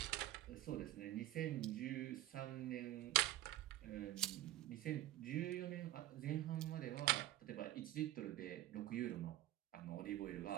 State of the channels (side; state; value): left; quieter; 15.0 dB